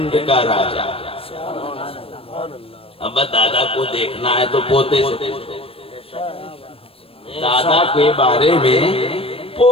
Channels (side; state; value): right; late; 0.28 ms